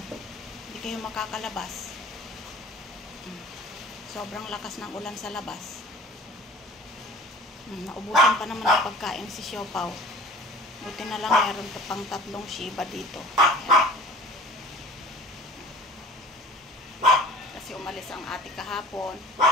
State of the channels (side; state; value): both; normal; correlation 0.44